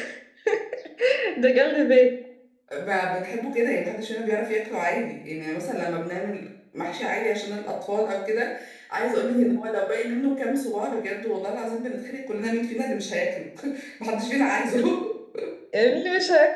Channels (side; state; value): both; identical; correlation 1.00